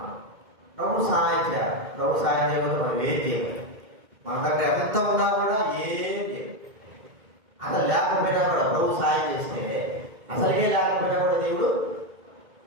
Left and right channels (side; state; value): left; late; 2.1 ms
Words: ప్రభు సహాయం చేయాలి. ప్రభు సహాయం చేయకపోతే మనం ఏం చేయాలి? మన దగ్గర ఎంత ఉన్నా కూడా ఏం చేయాలి. అసలు లేకపోయినా కూడా ప్రభు సహాయం చేస్తే, అసలుగే లేకపోయినా కూడా దేవుడు